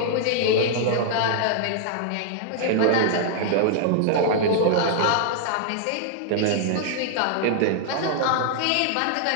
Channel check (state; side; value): different; both; correlation 0.00